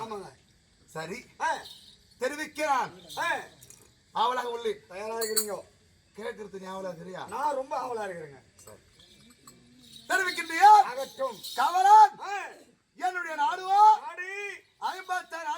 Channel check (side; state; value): both; identical; correlation 1.00